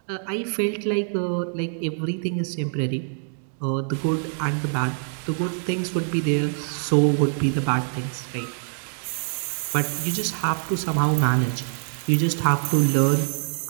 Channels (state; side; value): silent; left; digital silence